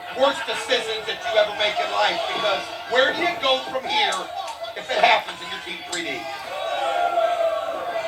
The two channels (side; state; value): both; identical; correlation 1.00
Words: worst decisions that you ever make in life, because where do you go from here if it happens in your Team 3D?